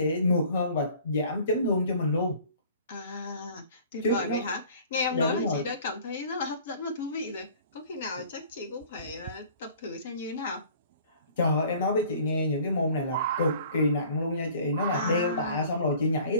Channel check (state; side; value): inverted; both; correlation -0.50